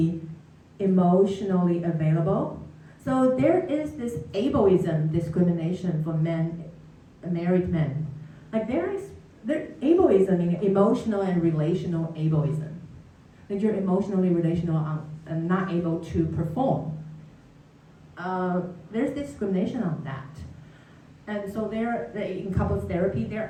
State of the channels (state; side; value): identical; both; correlation 1.00